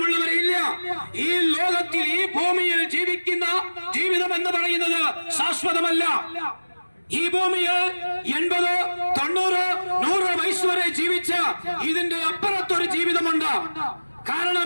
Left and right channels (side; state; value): both; inverted; correlation -1.00